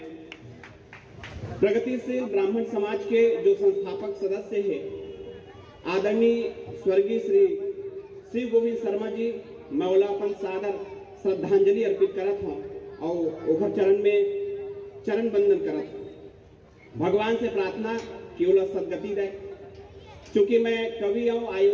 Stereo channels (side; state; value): both; identical; correlation 1.00